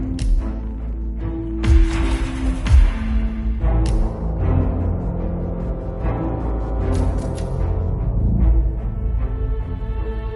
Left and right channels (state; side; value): identical; both; correlation 1.00